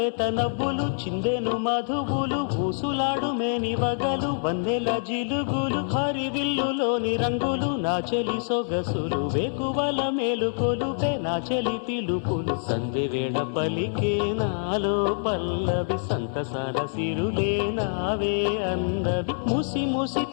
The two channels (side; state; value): right; silent; digital silence